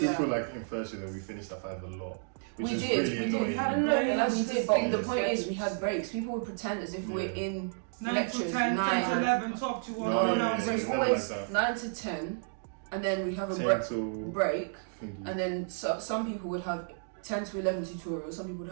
feel like in first year that we finished at 5 a lot. Which We is did, really we did. annoying. We had a break. we did, but the Yeah. point is we had breaks. People would pretend as if we're in 9 lectures, to 10, 10 to 9. 11, 12 to 1. No, So it's yeah, always like that. 9 to 10, and then we have a 10 till break, thingy. and then some people would have 10 to 11 tutorials, some people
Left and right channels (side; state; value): left; silent; digital silence